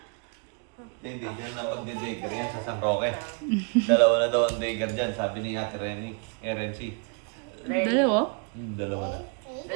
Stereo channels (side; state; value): left; quieter; 37.3 dB